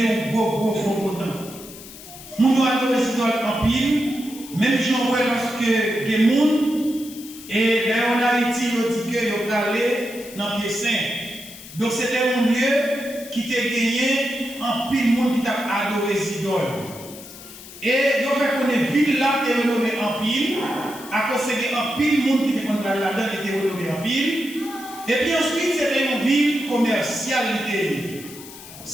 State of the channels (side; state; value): left; noise; hiss, 16 dB below the sound